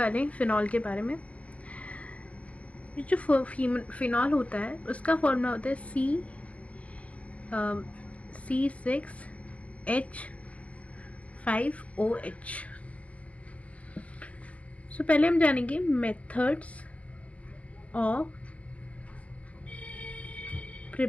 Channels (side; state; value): right; late; 0.065 ms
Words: हैं फिनॉल के बारे में। जो फिनॉल होता है उसका फॉर्मूला होता है C6H5OH। पहले हम जानेंगे methods of